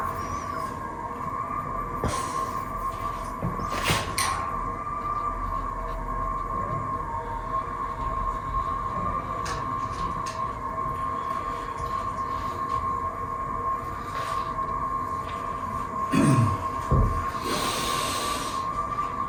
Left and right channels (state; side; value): identical; both; correlation 1.00